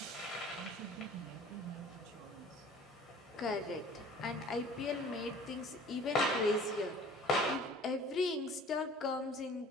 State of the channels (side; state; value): both; normal; correlation 0.48